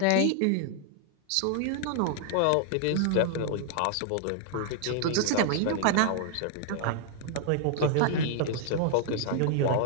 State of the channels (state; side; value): different; both; correlation 0.00